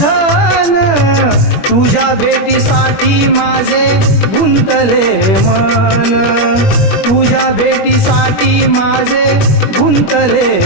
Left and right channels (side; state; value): right; late; 21 ms